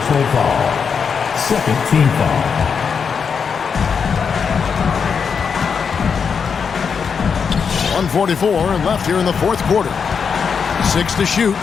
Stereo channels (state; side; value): quieter; right; 6.2 dB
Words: foul. Second team foul. 1:44 left here in the fourth quarter. 6 to shoot.